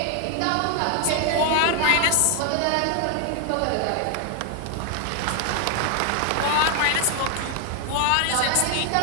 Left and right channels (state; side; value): different; both; correlation 0.00